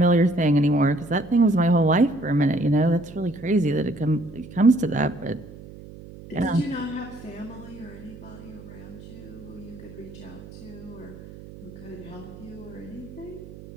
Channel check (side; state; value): right; noise; hum, 16 dB below the sound